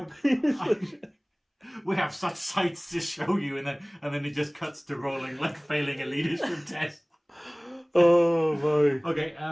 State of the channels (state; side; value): identical; both; correlation 1.00